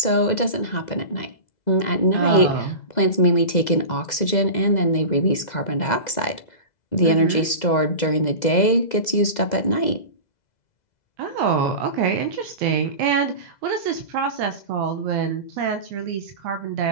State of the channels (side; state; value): right; late; 2.0 ms